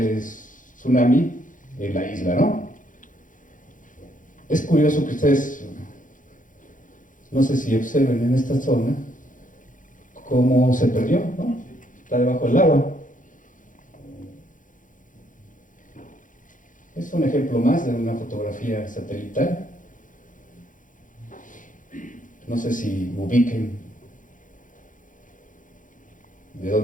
tsunami en la isla, ¿no? Es curioso que ustedes, no sé si observen en esta zona, cómo se perdió, ¿no? Está debajo del agua. Es un ejemplo más de una fotografía satelital. No sé si ubiquen de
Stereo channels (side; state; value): right; late; 0.38 ms